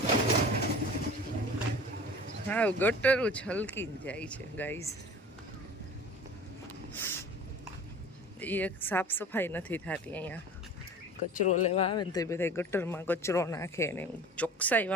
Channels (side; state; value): both; normal; correlation 0.40